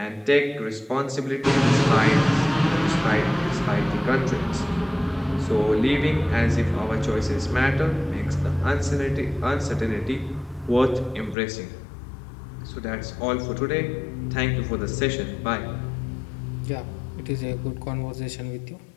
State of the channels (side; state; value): right; drops out; at 11.4 s